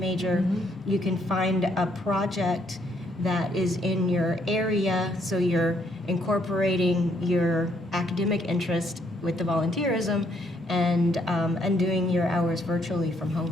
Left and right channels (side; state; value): both; normal; correlation 0.71